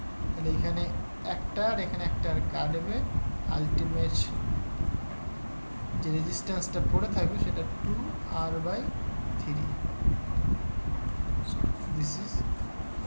তাহলে এখানে একটা আর এখানে একটা আর কাটবে, আলটিমেট যে রেজিস্ট্যান্সটা পড়ে থাকবে সেটা 2R/3। This is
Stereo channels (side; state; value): both; inverted; correlation -1.00